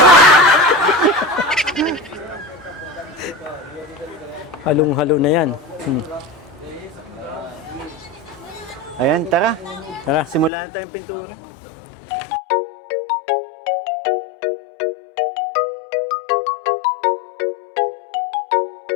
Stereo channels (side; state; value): right; drops out; at 10.5 s